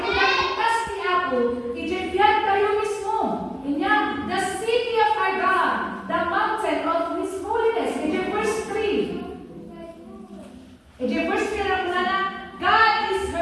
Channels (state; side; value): identical; both; correlation 1.00